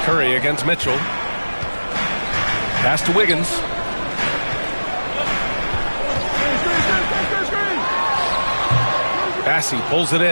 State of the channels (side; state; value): both; inverted; correlation -1.00